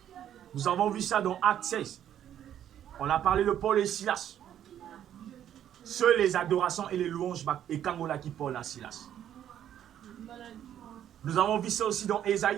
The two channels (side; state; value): left; quieter; 10.5 dB